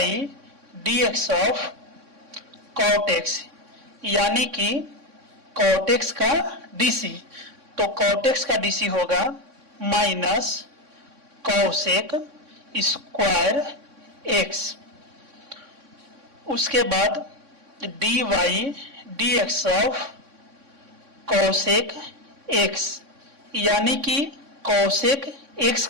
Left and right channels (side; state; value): left; late; 3.6 ms